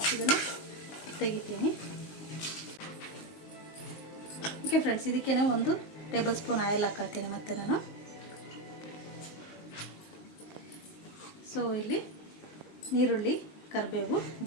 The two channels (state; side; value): late; right; 19 ms